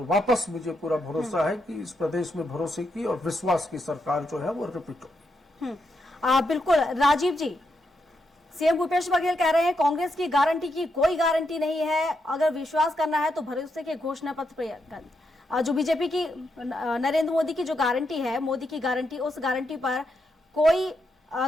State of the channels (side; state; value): both; normal; correlation 0.82